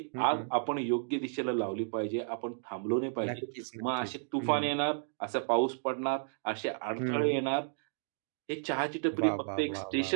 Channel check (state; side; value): silent; left; digital silence